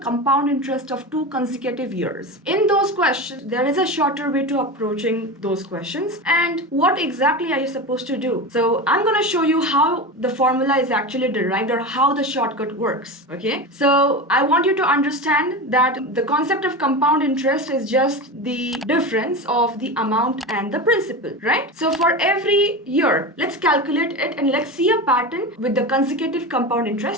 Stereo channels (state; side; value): normal; both; correlation 0.24